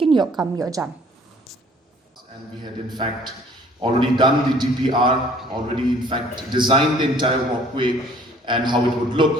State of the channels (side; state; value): both; normal; correlation 0.55